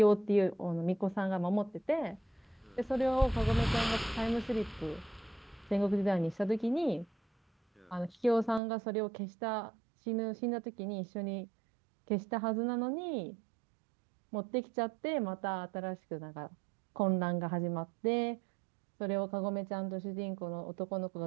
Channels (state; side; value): drops out; left; at 8.6 s